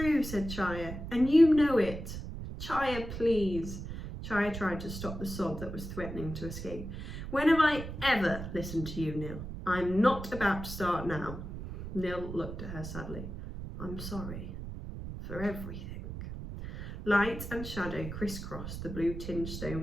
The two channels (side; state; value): right; noise; rumble, 8 dB below the sound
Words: said Chaya, and you know it. Chaya, please. Chaya tried to stop the sob that was threatening to escape. When have I ever listened to you, Nil? I'm not about to start now. Nil looked at her sadly. I'm sorry for everything. Light and shadow crisscrossed the blue-tinged